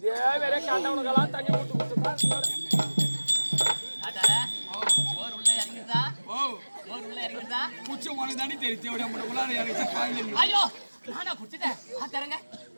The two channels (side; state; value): both; inverted; correlation -1.00